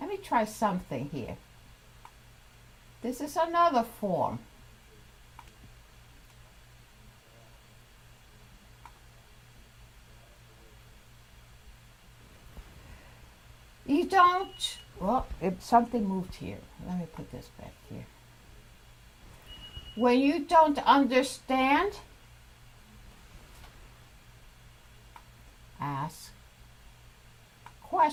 me try something here. This is another form. You don't, well, if something moved here. Let me put this back here. When you don't understand, ask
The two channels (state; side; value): identical; both; correlation 1.00